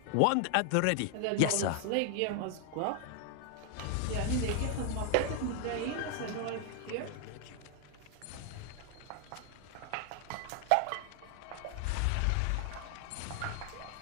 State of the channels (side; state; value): both; different; correlation 0.00